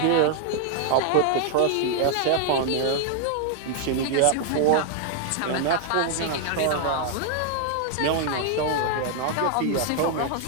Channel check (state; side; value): different; both; correlation 0.00